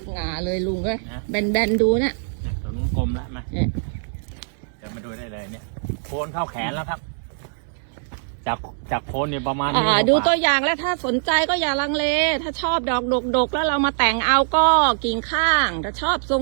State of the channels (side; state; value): left; silent; 64 dB below the other